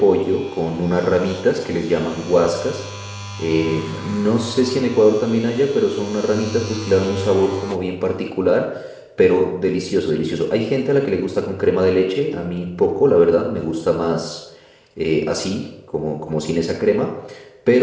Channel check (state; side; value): identical; both; correlation 1.00